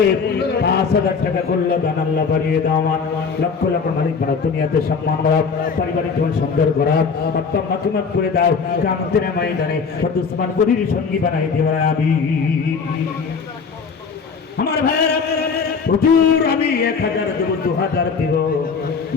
5,000 টাকা করলো দান। আল্লাহ বাড়িয়ে দাও। আমার লক্ষ লক্ষ মালিক বাড়া, দুনিয়াতে সম্মান বাড়া, পারিবারিক জীবন সুন্দর করা, আত্মা মাতুমাত করে দাও। কিয়ামতের ময়দানে উসমান গনির সঙ্গী বানাই দিও আমিন। আমার ভাইয়েরা, হুজুর আমি 1000 দেব, 2000 দেব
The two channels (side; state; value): right; quieter; 5.4 dB